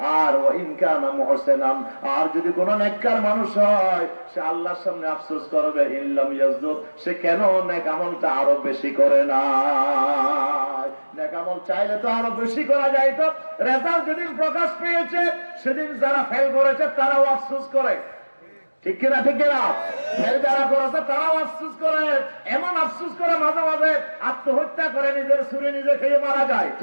আর ওয়া ইন কানা মুহসিনান, আর যদি কোনো নেককার মানুষ হয় সে আল্লাহর সামনে আফসোস করবে ইল্লাম ইয়াজদুদ, সে কেন নেক আমলটা আরো বেশি করে না। নেক আমল চাইলে তো আরো বেশি করা যায়। তো রেজাল্ট যেদিন প্রকাশ পেয়েছে সেদিন যারা ফেল করেছে তারাও আফসোস করে, ঠিক কিনা? ঠিক কিনা? ফেল যারা করেছে তারাও আফসোস করে। এমন আফসোস করে মাঝে মাঝে আত্মহত্যা করে, নিজের ছুরি নিজে খেয়ে মারা যায়,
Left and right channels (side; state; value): both; inverted; correlation -1.00